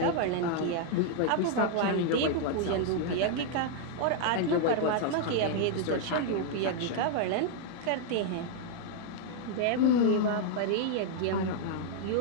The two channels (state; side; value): different; both; correlation -0.01